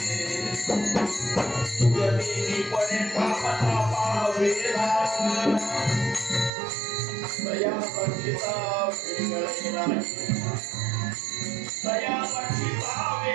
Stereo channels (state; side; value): drops out; left; at 6.5 s